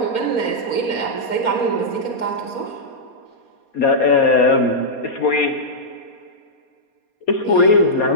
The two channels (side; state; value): right; late; 4.2 ms